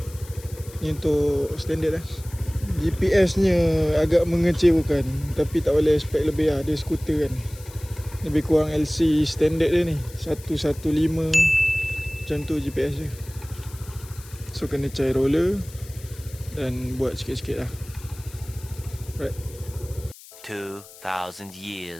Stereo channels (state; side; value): noise; left; hiss, 20 dB below the sound